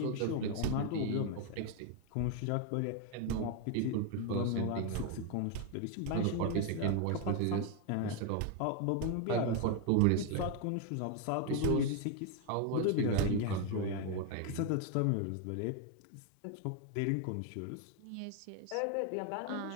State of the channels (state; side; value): different; both; correlation 0.01